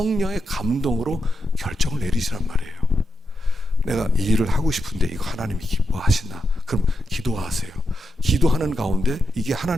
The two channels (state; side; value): normal; both; correlation 0.86